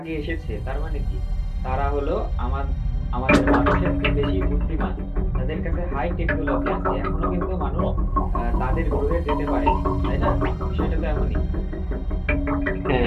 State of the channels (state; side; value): identical; both; correlation 1.00